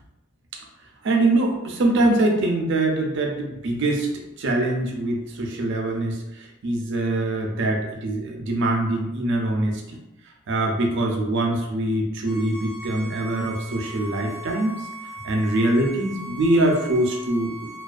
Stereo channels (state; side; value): normal; both; correlation 0.59